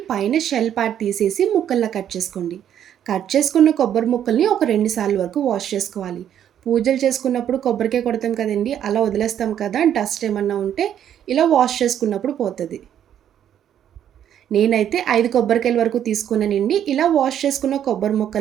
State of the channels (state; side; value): quieter; left; 10.0 dB